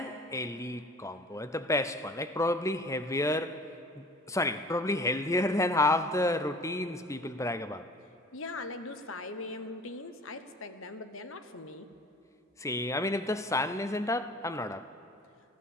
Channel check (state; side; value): normal; both; correlation 0.46